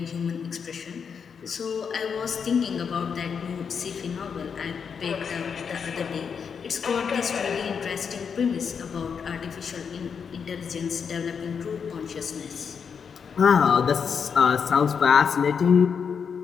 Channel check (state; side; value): quieter; right; 6.5 dB